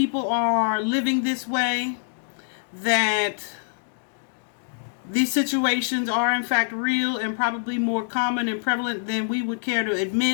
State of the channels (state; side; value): silent; right; digital silence